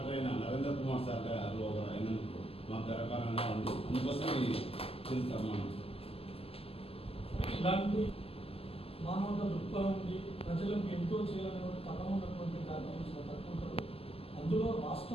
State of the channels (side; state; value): right; late; 0.28 ms